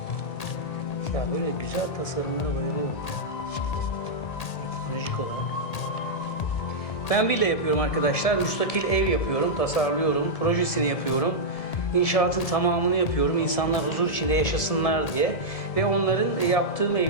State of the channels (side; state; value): right; late; 1.8 ms